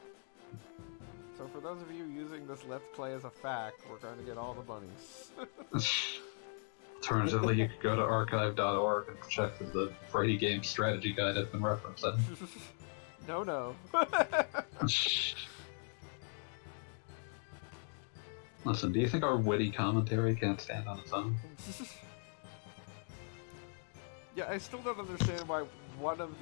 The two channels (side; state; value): right; silent; 52 dB below the other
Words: So for those of you using this Let's Play as a fact, we're going to get all the bunnies. Alternatively, you could go to archive.org and check the Friday Game Strategy Guide I've been referencing. No. Listen, do you think our witty commentary can't stand on its own? Yeah, I still don't understand why one of